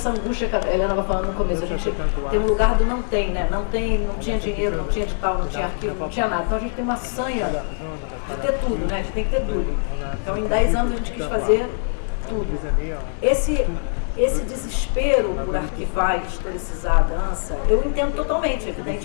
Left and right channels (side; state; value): right; silent; 58 dB below the other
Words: angústia que a Helena estava falando no começo. A gente tem um lugar do não tem, né? Não tinha dinheiro, não tinha edital, não tinha arquivo, não tinha nada. Então a gente tem uma sanha de ter tudo, né? A gente tem que ter tudo. Então em 10 anos a gente quis fazer tudo. Esse desespero por arquivar e historicizar a dança, eu entendo totalmente,